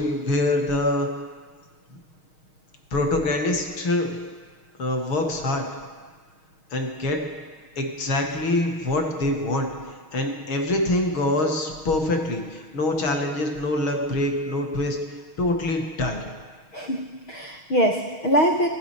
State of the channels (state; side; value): late; right; 6.4 ms